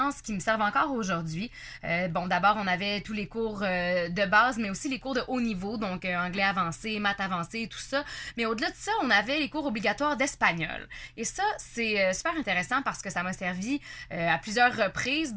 qui me servent encore aujourd'hui. Bon, d'abord, on avait tous les cours de base, mais aussi les cours de haut niveau, donc anglais avancé, maths avancé, tout ça. Mais au-delà de ça, on avait les cours obligatoires d'espagnol. Et ça, c'est super intéressant parce que ça m'a servi à plusieurs reprises.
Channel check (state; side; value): identical; both; correlation 1.00